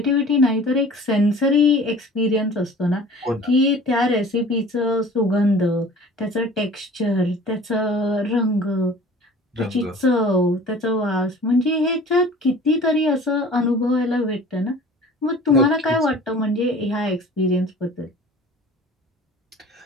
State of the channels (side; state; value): both; normal; correlation 0.44